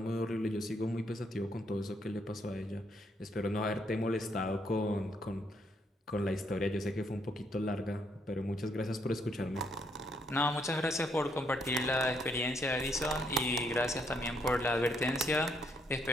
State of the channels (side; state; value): both; normal; correlation 0.73